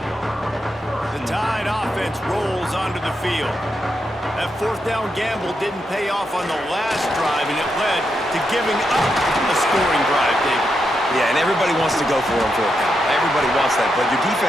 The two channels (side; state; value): both; normal; correlation 0.84